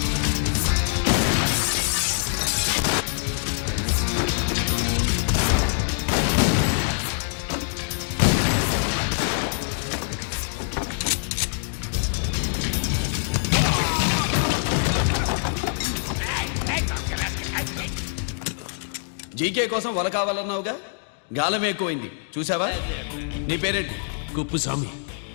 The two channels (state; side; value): silent; right; digital silence